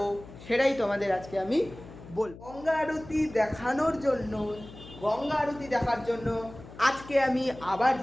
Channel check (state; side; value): noise; left; hum, 17 dB below the sound